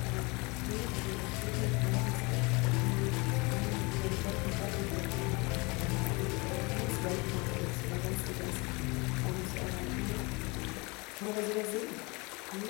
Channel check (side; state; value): right; quieter; 27.2 dB